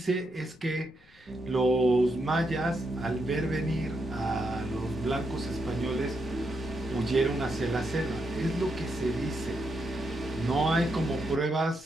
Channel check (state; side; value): noise; left; rumble, 27 dB below the sound